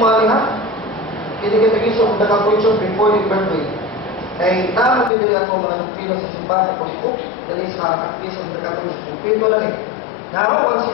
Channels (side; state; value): right; drops out; at 5.1 s